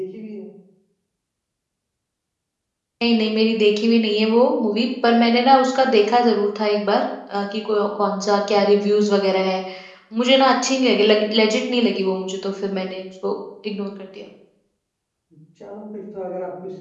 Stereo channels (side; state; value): both; identical; correlation 1.00